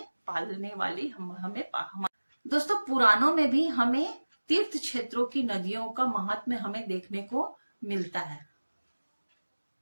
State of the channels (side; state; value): both; inverted; correlation -1.00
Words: पालने वाली, दोस्तों पुराणों में भी हमें तीर्थ क्षेत्रों की नदियों का महात्म्य हमें देखने को मिलता है।